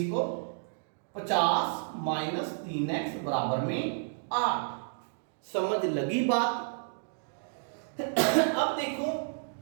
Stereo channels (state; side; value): silent; left; digital silence